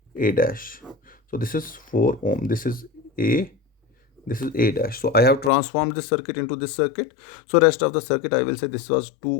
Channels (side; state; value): right; drops out; at 5.5 s